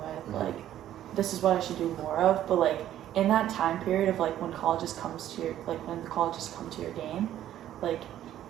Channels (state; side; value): quieter; left; 12.0 dB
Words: Mhm. like, this is what I should do more of. But like in that time period of like when colleges comes to your, like when the colleges come to your game, like